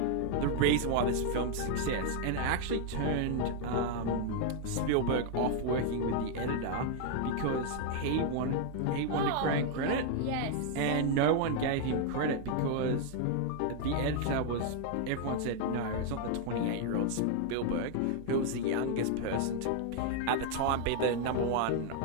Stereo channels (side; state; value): both; different; correlation 0.00